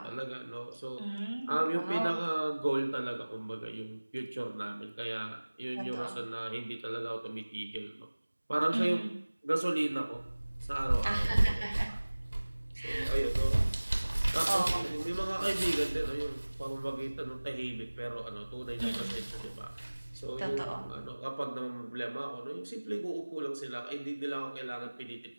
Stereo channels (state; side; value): inverted; both; correlation -1.00